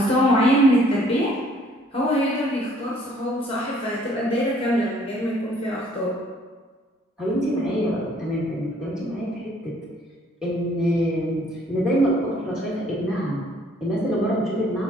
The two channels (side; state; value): both; normal; correlation 0.61